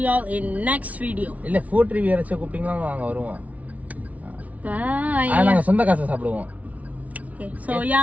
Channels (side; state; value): left; late; 0.069 ms